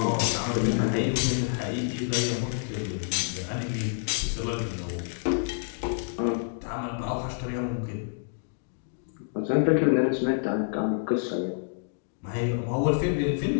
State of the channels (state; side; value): silent; right; digital silence